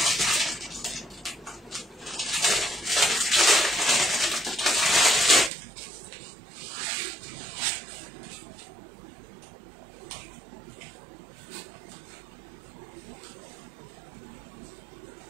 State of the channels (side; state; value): left; drops out; at 5.5 s